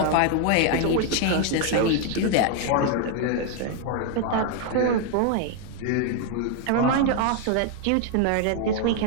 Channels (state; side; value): different; both; correlation 0.00